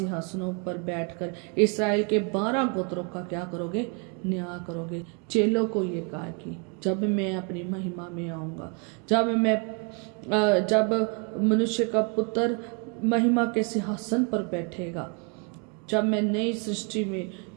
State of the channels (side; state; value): left; quieter; 35.8 dB